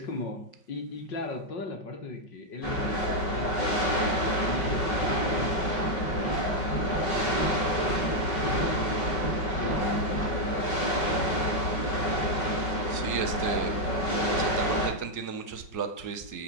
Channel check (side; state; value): right; late; 5.3 ms